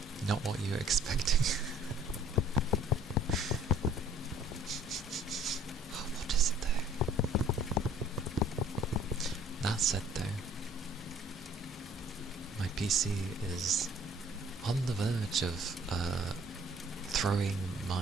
not what you're expecting. Oh, what is it though? That said though, my PC is on the verge of throwing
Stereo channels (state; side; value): normal; both; correlation 0.56